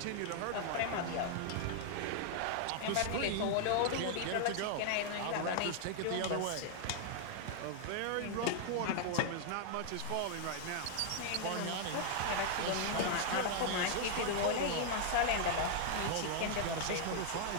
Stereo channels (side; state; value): both; different; correlation -0.01